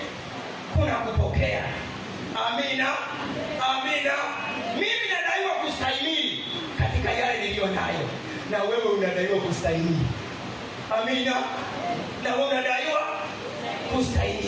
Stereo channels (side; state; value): both; identical; correlation 1.00